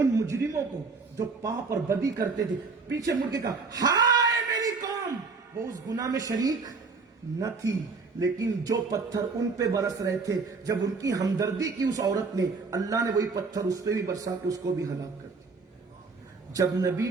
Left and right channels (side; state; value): left; quieter; 4.4 dB